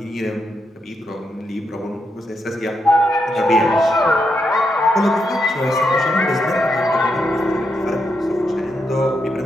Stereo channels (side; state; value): both; normal; correlation 0.82